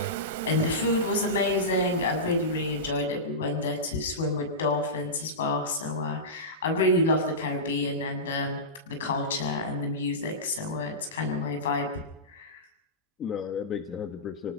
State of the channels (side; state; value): both; normal; correlation -0.17